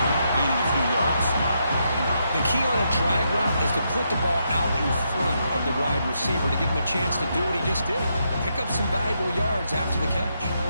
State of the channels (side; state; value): both; inverted; correlation -0.80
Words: gaining a few yards. The key on a drag route is to put the ball out in front of the wide receiver to give him a chance to do what he just did. Pick up some valuable yards after the catch.